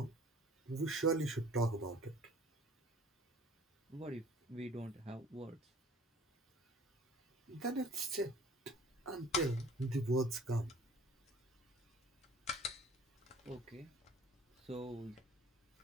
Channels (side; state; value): both; normal; correlation 0.49